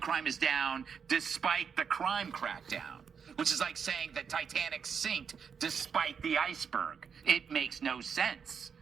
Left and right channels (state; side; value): quieter; left; 6.6 dB